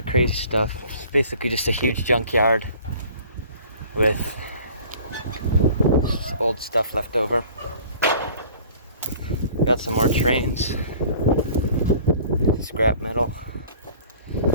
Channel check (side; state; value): both; inverted; correlation -0.48